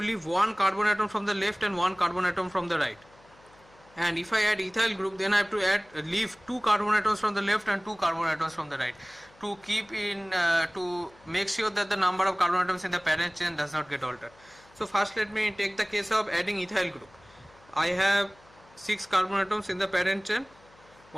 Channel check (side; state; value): left; noise; hum, 28 dB below the sound